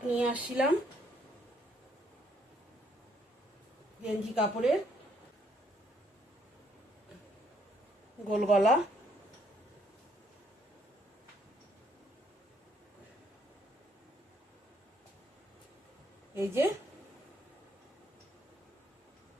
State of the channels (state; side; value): normal; both; correlation 0.69